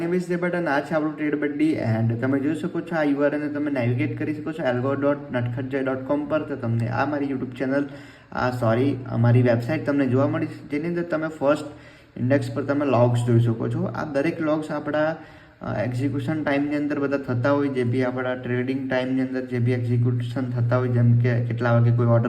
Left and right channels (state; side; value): identical; both; correlation 1.00